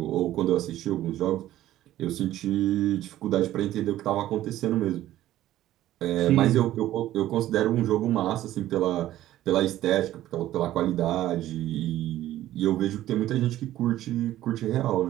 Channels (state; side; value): quieter; left; 13.9 dB